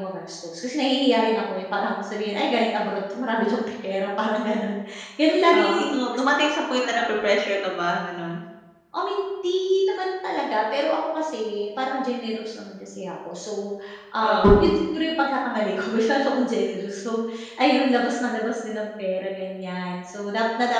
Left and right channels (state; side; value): identical; both; correlation 1.00